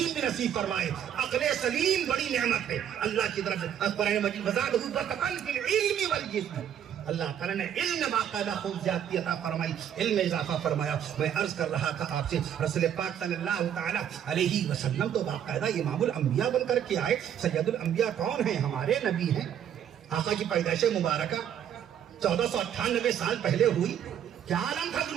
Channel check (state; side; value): quieter; left; 9.5 dB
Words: بھی نصیب فرمائے. عقل سلیم بڑی نعمت ہے اللہ کی طرف سے. قرآن مجید وزادہ بسطا فی العلم والجسم. اللہ تعالیٰ نے علم باقاعدہ خوب زیادتی عطا فرمائی، علم اضافہ فرمایا. میں عرض کر رہا تھا آپ سے، رسول پاک صلی اللہ تعالیٰ علیہ وسلم تو باقاعدہ امام الانبیاء بن کر کے آئے. سید الانبیاء کون ہیں؟ ہمارے نبی ہیں. آقا کی پیدائش مبارکہ 1498 سال پہلے ہوئی. کیا عالم تھا